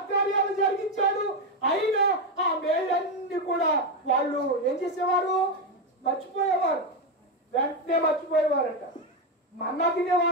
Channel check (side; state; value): both; normal; correlation 0.09